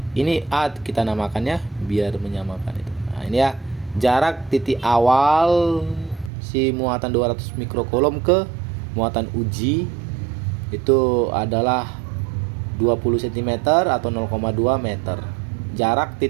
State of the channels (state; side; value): drops out; left; at 6.3 s